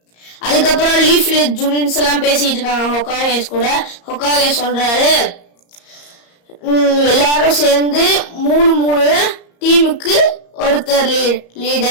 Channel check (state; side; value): late; right; 34 ms